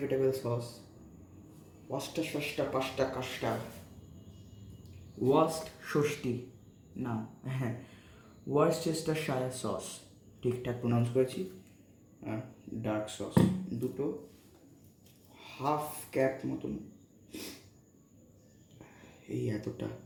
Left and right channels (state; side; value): identical; both; correlation 1.00